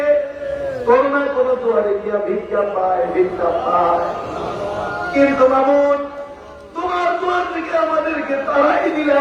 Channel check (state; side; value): identical; both; correlation 1.00